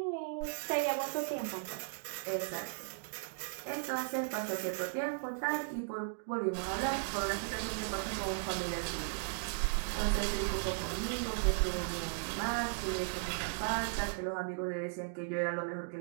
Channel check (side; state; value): left; silent; digital silence